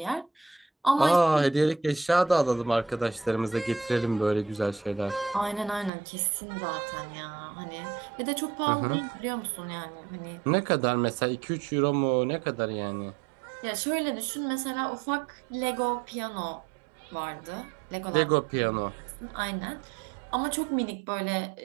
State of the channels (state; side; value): drops out; left; at 5.9 s